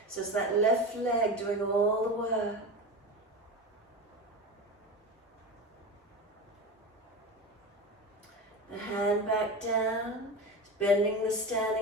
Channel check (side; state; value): both; normal; correlation 0.25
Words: So it's that left leg doing all the work. The hand back down. Bending the